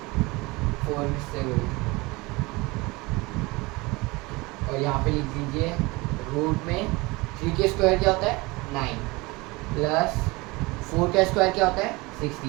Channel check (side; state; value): left; quieter; 23.7 dB